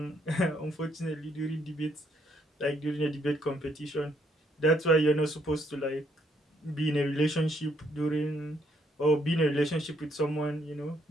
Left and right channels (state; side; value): normal; both; correlation 0.71